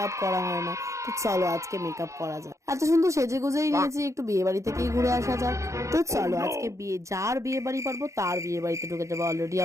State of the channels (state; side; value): late; left; 0.15 ms